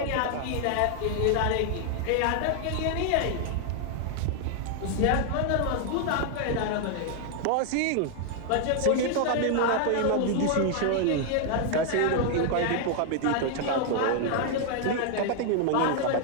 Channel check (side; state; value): both; different; correlation 0.00